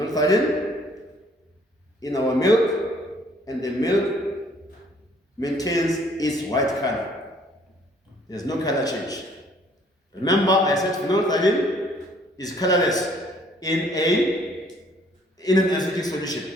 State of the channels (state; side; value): normal; both; correlation 0.60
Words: in our milk, and the milk maintains its white color. There's no color change. Remember, I said phenolphthalein is colorless in an acidic solution.